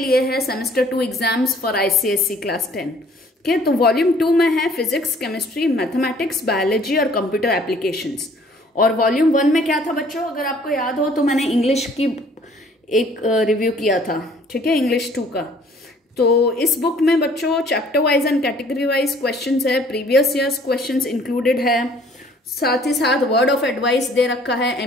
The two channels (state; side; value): normal; both; correlation 0.57